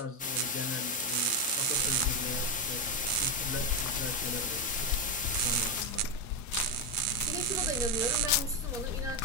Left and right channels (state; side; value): normal; both; correlation 0.07